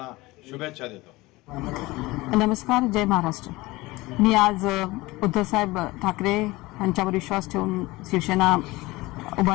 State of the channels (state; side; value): quieter; right; 20.8 dB